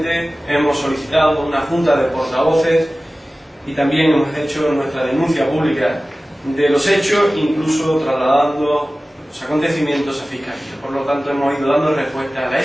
hemos solicitado una junta de portavoces y también hemos hecho nuestra denuncia pública de los hechos, incluso trasladando los acontecimientos a Fiscalía. Por lo tanto, hemos ido dando respuesta a la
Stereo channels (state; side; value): normal; both; correlation 0.97